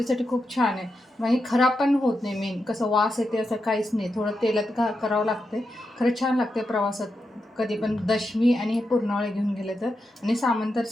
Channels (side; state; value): both; normal; correlation 0.87